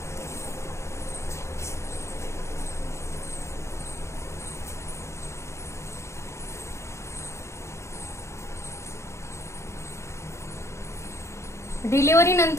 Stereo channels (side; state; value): right; late; 0.14 ms